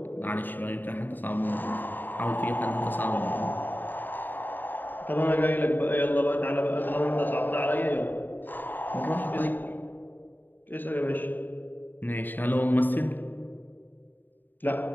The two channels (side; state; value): right; late; 0.091 ms